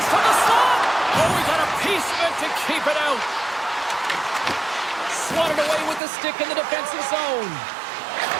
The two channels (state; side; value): drops out; left; at 6.0 s